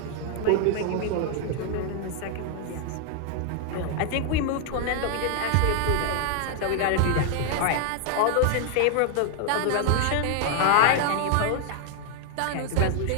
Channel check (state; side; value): different; both; correlation 0.00